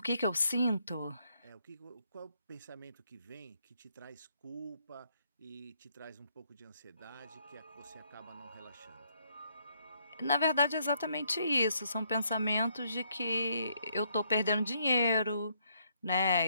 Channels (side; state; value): both; inverted; correlation -0.72